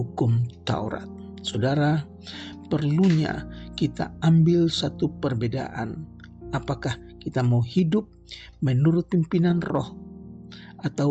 Taurat. Saudara, perlunya kita ambil satu perbedaan. Apakah kita mau hidup menurut pimpinan roh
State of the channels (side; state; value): both; identical; correlation 1.00